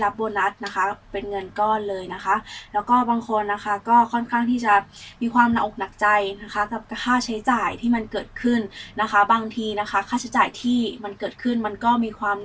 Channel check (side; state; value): both; identical; correlation 1.00